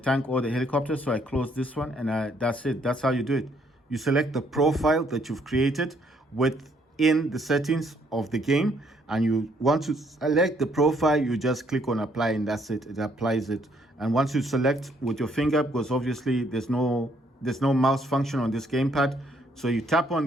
or the helicopter, so I close this one, and that's it. That's how you do it. You select the profile that you've created with in the settings of the game and you want to select the profile, you just click on apply and that's it. It applies it. And once you select with your finger, because obviously there's no mouse function on this gamepad, so you tap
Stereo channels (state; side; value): normal; both; correlation 0.68